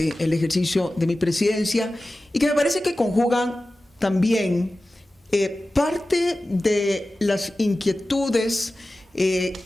el ejercicio de mi presidencia, y que me parece que conjugan también parte de las inquietudes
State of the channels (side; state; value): both; normal; correlation 0.95